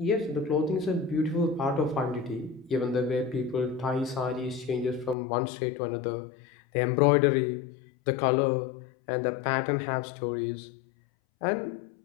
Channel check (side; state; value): right; drops out; at 5.2 s